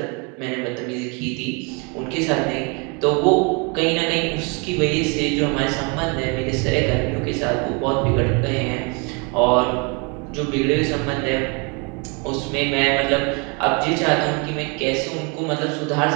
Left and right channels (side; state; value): left; quieter; 32.5 dB